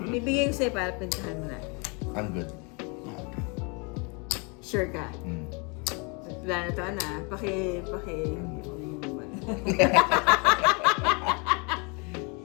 Bibigay ko sa'yo para pintahan mo na. I'm good. Sure ka? Mm. Wala na to, Ana.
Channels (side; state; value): right; quieter; 32.3 dB